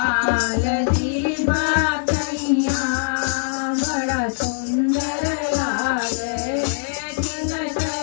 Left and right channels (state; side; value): silent; right; digital silence